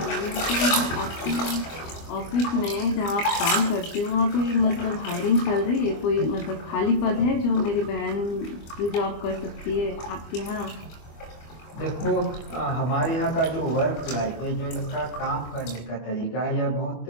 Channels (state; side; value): late; right; 25 ms